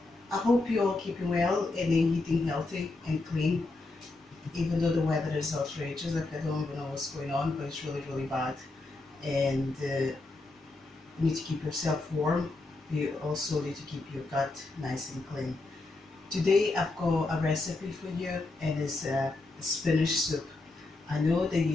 I hope you're all keeping well and eating healthy and clean, even though the weather is outrageous. Like I don't even know what's going on, but it's really bad. And you need to keep yourself warm. You also need to keep your gut nice and clean. Today I've got a recipe for you, and it's a spinach soup. I know that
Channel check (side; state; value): right; quieter; 3.2 dB